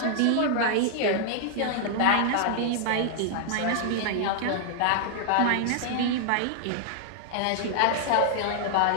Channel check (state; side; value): different; both; correlation -0.01